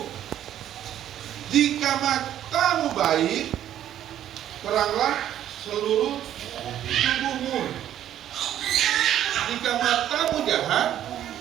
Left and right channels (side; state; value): left; quieter; 11.2 dB